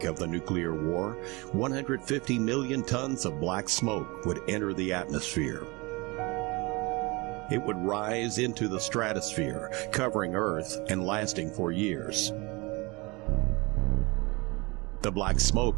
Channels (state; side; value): quieter; left; 25.7 dB